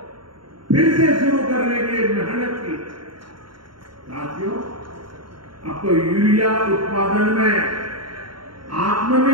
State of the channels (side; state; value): left; late; 0.73 ms